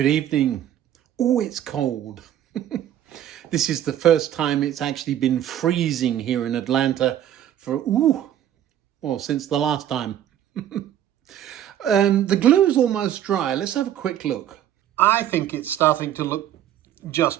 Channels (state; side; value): quieter; left; 11.1 dB